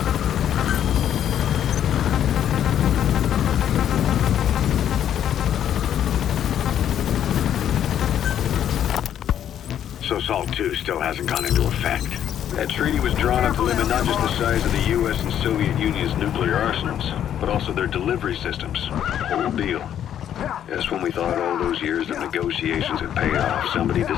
So SALT 2 still hasn't gone into effect. That treaty was drawn up to limit not just the size of the U.S. and Soviet Union's nuclear arsenals, but also their delivery systems. Whole deal. Just when we thought all those years of negotiations had paid off, somebody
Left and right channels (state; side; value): quieter; right; 10.1 dB